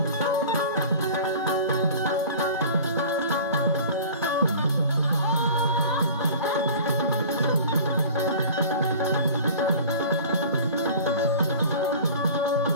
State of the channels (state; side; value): inverted; both; correlation -0.42